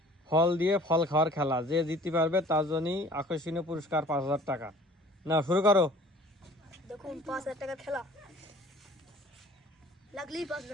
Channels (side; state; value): both; normal; correlation 0.50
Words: ফল দিয়ে ফল খাওয়ার খেলা, যে জিততে পারবে তার জন্যই আকর্ষণীয় পুরস্কার 5000 টাকা। না শুরু করো। দেখুন 5000 টাকার খেলা, লাগলেই